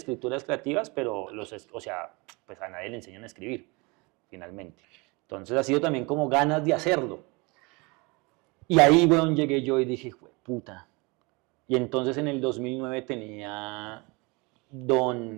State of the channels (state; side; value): quieter; left; 27.2 dB